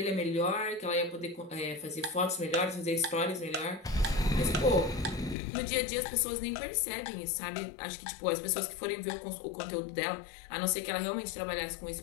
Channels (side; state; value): right; drops out; at 5.4 s